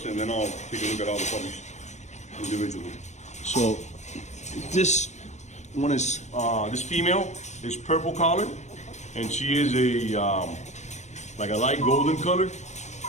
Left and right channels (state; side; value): late; right; 0.34 ms